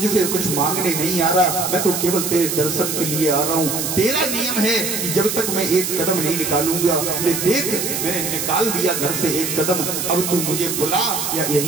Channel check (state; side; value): noise; right; hiss, 2 dB below the sound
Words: कुछ मांगने नहीं आ रहा, मैं तो केवल तेरे दर्शन के लिए आ रहा हूँ। तेरा नियम है कि जब तक मैं एक कदम नहीं निकालूंगा, बोले देख मैंने निकाल दिया घर से एक कदम, अब तू मुझे बुला या